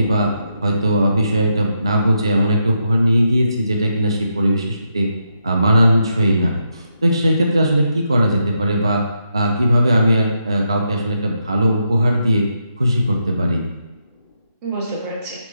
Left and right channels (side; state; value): both; inverted; correlation -0.81